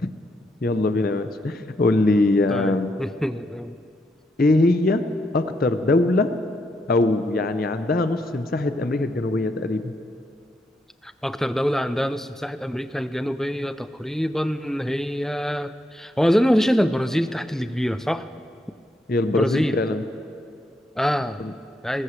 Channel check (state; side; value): normal; both; correlation 0.78